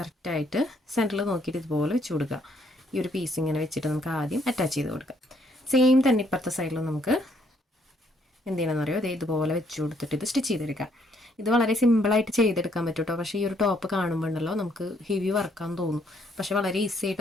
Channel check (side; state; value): both; normal; correlation 0.69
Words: കറക്റ്റായിട്ട് സെൻറ്ററിൽ നോക്കിയിട്ട് ഇതുപോലെ വെച്ച് കൊടുക്കുക. ഈ ഒരു പീസ് ഇങ്ങനെ വെച്ചിട്ട് നമുക്ക് ആദ്യം അറ്റാച്ച് ചെയ്ത് കൊടുക്കാം. സെയിം തന്നെ ഇപ്പുറത്തെ സൈഡിലും നമുക്ക് എന്ത് ചെയ്യണമെന്ന് അറിയോ, അതേ ഇതുപോലെ വെച്ച് കൊടുത്തിട്ട് ഇത് സ്റ്റിച്ച് ചെയ്തെടുക്കാം. ഇത് വളരെ സിമ്പിളായിട്ട് ചെയ്തെടുക്കാൻ പറ്റും കേട്ടോ. പക്ഷേ ഈ ഒരു ടോപ്പ് കാണുമ്പോൾ ഉണ്ടല്ലോ നമുക്ക് ഹെവി വർക്കാന്ന് തോന്നും, പക്ഷേ വളരെ ഈസി ആയിട്ട്